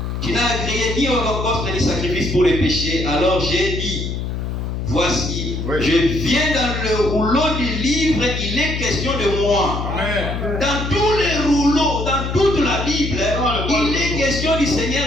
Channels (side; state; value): left; noise; hum, 4 dB below the sound